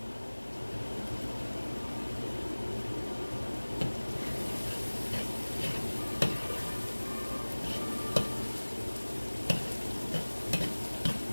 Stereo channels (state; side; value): inverted; both; correlation -1.00